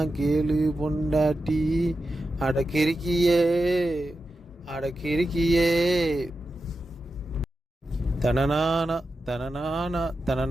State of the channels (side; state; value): both; normal; correlation 0.90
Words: கேளு பொண்டாட்டி. அடக்கிருக்கியே அடக்கிருக்கியே. தனநானா தனநானா